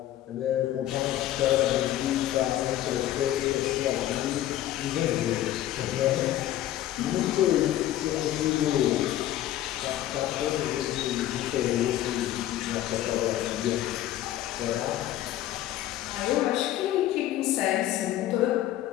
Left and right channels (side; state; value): right; quieter; 13.3 dB